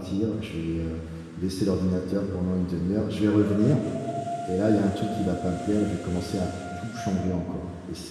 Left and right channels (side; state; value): both; identical; correlation 1.00